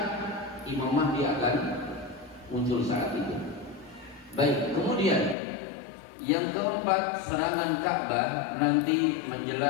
Imam Mahdi akan muncul saat itu. Baik, kemudian yang keempat, serangan Ka'bah nanti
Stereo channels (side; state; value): right; drops out; at 5.4 s